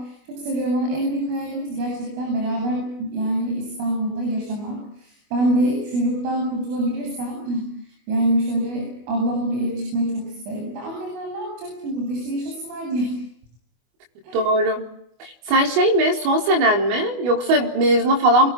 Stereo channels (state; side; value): late; left; 24 ms